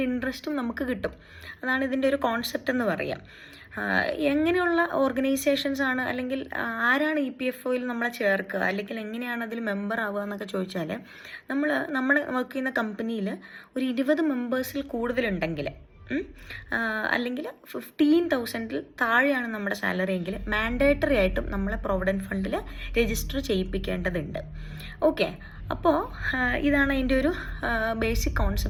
ഇൻട്രസ്റ്റും നമുക്ക് കിട്ടും. അതാണ് ഇതിൻ്റെ ഒരു കോൺസെപ്റ്റ് എന്ന് പറയാം. എങ്ങനെയുള്ള ഓർഗനൈസേഷൻസ് ആണ് അല്ലെങ്കിൽ ആരാണ് EPFOയിൽ നമ്മളെ ചേർക്കുക അല്ലെങ്കിൽ എങ്ങനെയാണ് അതിൽ മെമ്പർ ആവുക എന്നൊക്കെ ചോദിച്ചാൽ നമ്മൾ വർക്ക് ചെയ്യുന്ന കമ്പനിയിൽ ഒരു 20 മെമ്പേഴ്സിൽ കൂടുതലുണ്ടെങ്കിൽ അല്ലെങ്കിൽ 15,000 താഴെയാണ് നമ്മുടെ സാലറി എങ്കിൽ മാൻഡേറ്ററി ആയിട്ടും നമ്മളെ പ്രൊവിഡൻറ്റ് ഫണ്ടിൽ രജിസ്റ്റർ ചെയ്യിപ്പിക്കേണ്ടതുണ്ട്. ഓക്കെ, അപ്പോൾ ഇതാണ് അതിൻ്റെ ഒരു ബേസിക്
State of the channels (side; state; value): both; identical; correlation 1.00